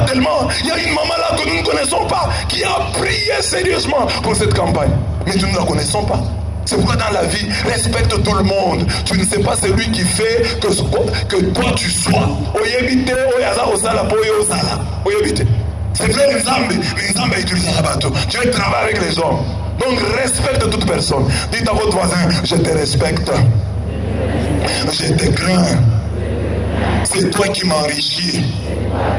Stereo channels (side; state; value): both; identical; correlation 1.00